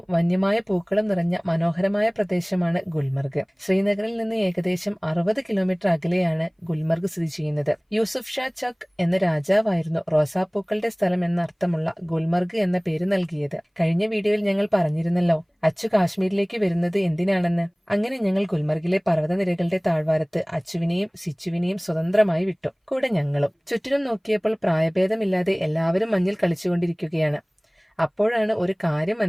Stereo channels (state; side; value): identical; both; correlation 1.00